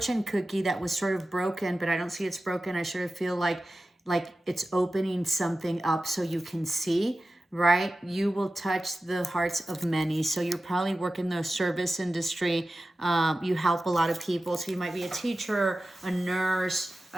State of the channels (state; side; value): normal; both; correlation 0.95